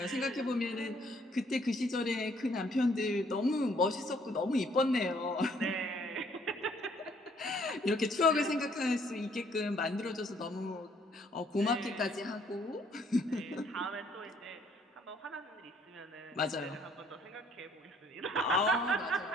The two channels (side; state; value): both; normal; correlation 0.64